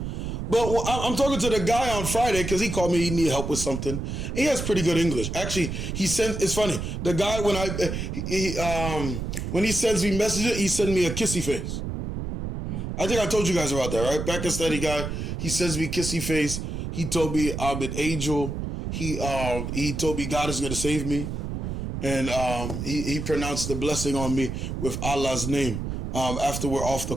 But I'm talking to the guy on Friday because he called me, he needed help with something. He has pretty good English. Actually, it's funny. The guy, when he sends me messages, he sends me a kissy face. I think I told you guys about that, right? Pakistani guy, he sends me kissy face. He told me I'm an angel. He told me God is going to save me. And he pronounced the blessing on me with Allah's name after we're off the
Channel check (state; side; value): noise; right; rumble, 4 dB below the sound